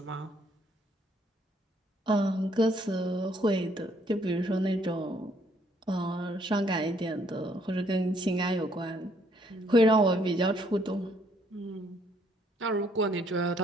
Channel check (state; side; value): normal; both; correlation 0.67